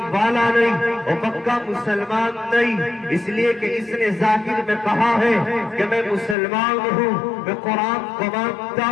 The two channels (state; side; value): drops out; right; at 6.4 s